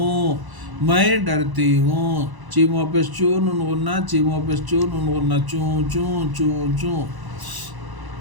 میں ڈرتی ہوں، چیم واپس چو نون غنہ، چیم واپس چو نون غنہ چوں چوں چوں چوں،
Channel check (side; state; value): left; late; 1.0 ms